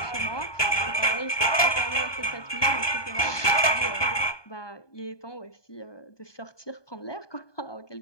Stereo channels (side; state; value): right; late; 1.2 ms